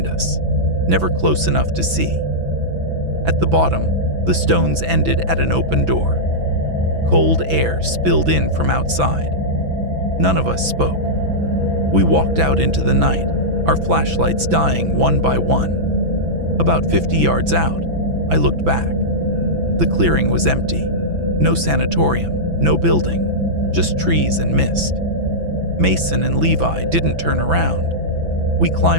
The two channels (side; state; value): left; late; 6.0 ms